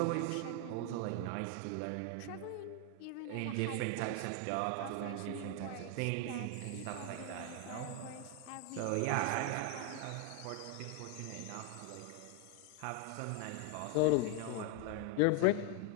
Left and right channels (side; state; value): both; different; correlation 0.01